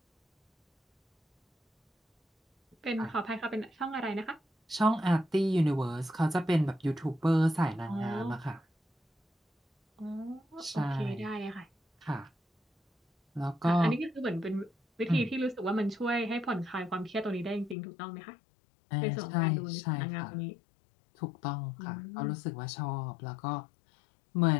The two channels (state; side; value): drops out; right; at 17.8 s